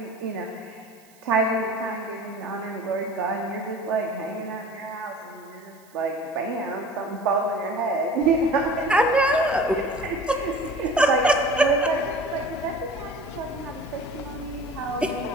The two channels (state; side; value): noise; right; hiss, 28 dB below the sound